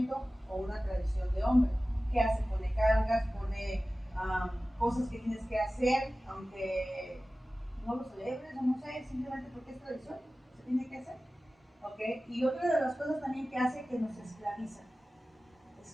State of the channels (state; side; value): normal; both; correlation 0.96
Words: o una tradición de hombre. ¿Qué hace? Pone cargas, pone cosas que tienes que hacer, aunque no lo celebres o no sé, simplemente porque es tradición, se tiene que hacer. ¿Ok? Y otra de las cosas también que hace que nos esclaviza.